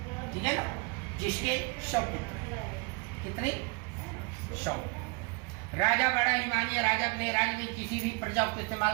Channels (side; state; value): left; quieter; 29.6 dB